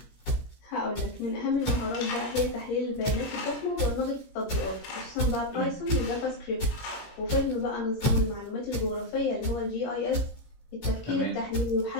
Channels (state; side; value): late; right; 17 ms